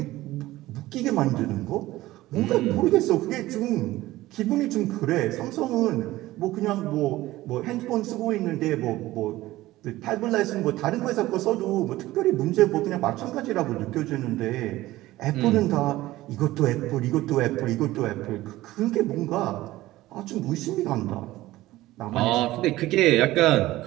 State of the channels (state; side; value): quieter; left; 16.9 dB